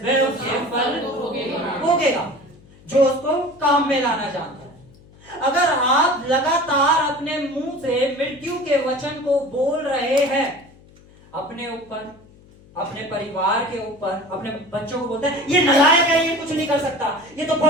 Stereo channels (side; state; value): left; noise; hum, 25 dB below the sound